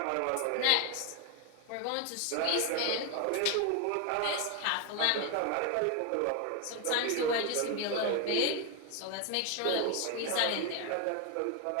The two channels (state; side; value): different; both; correlation 0.01